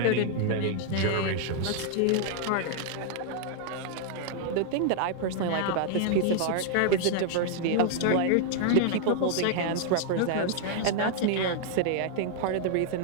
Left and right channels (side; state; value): both; different; correlation 0.00